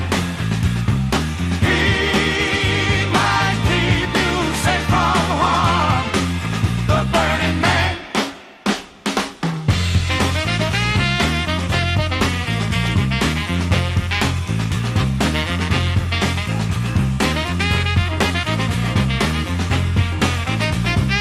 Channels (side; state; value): both; identical; correlation 1.00